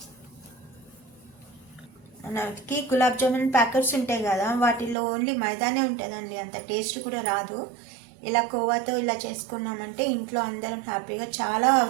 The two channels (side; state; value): left; drops out; at 5.0 s